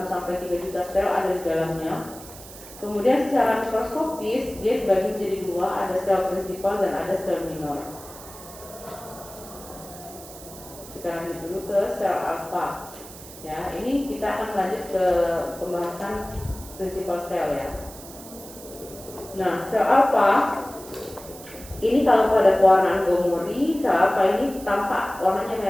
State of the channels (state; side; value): noise; right; hiss, 16 dB below the sound